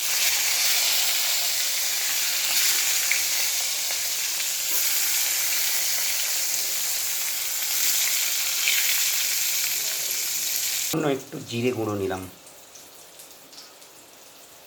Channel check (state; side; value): identical; both; correlation 1.00